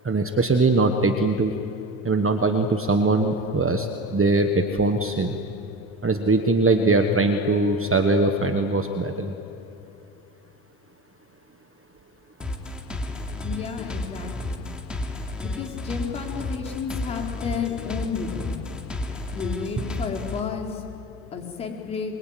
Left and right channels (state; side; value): normal; both; correlation 0.32